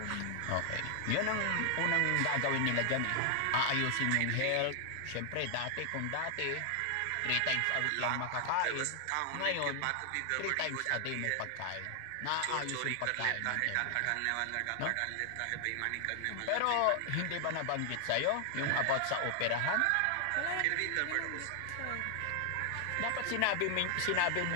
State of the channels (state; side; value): different; both; correlation 0.00